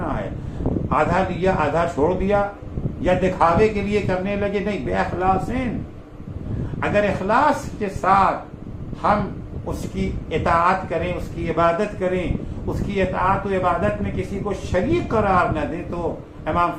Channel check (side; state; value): both; identical; correlation 1.00